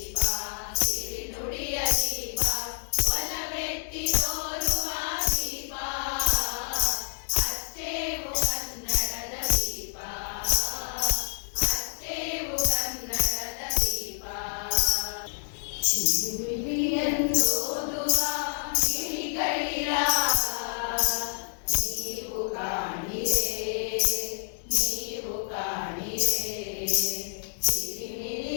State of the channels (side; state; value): right; silent; digital silence